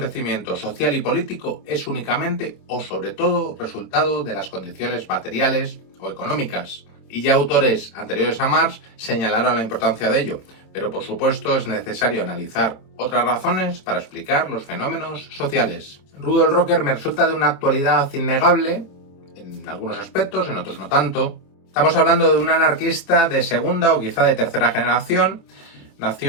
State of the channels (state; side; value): late; right; 27 ms